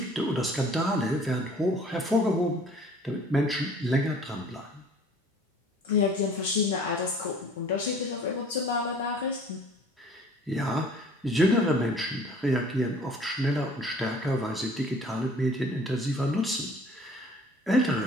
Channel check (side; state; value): both; normal; correlation 0.51